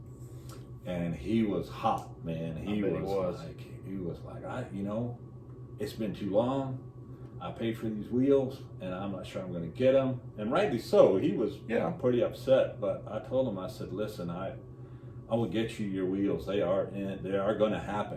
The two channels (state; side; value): identical; both; correlation 1.00